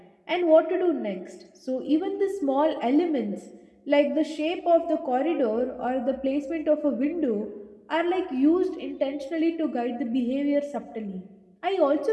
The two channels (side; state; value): both; identical; correlation 1.00